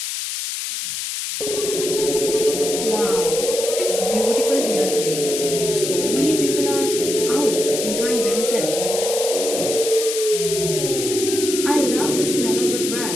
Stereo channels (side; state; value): left; noise; hiss, 4 dB below the sound